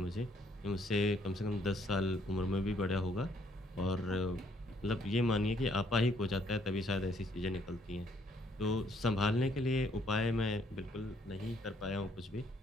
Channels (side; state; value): both; normal; correlation 0.67